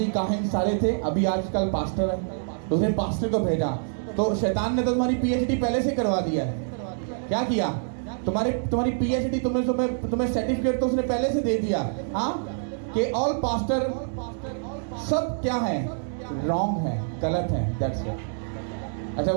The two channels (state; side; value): silent; left; digital silence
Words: काहिन सारे थे, अभी आजकल पास्टर है। दूसरे पास्टर को भेजा तो शैतान ने तो तुम्हारी पीएचडी पहले से करवा दिया है। क्या किया? तुम्हारी पीएचडी तुम्हें सर्टिफिकेट तो उसने पहले से दे दिया। हाँ, कि ऑल पास्टर सब क्या है? रॉन्ग है, गलत है। That's it. अच्छा,